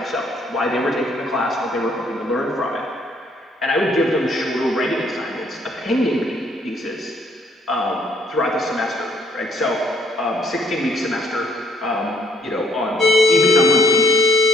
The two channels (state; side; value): normal; both; correlation 0.65